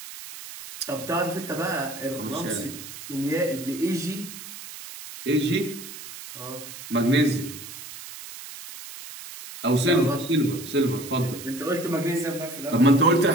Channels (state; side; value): noise; right; hiss, 13 dB below the sound